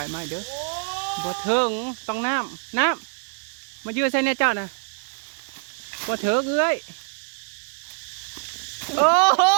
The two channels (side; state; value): left; silent; 55 dB below the other